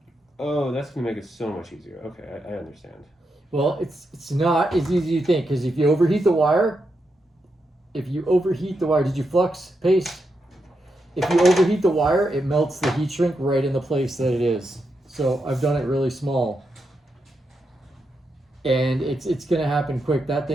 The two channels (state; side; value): normal; both; correlation 0.84